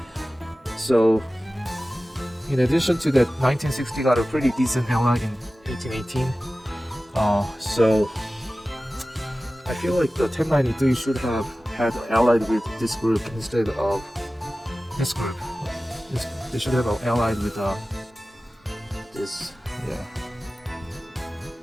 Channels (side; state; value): both; normal; correlation 0.96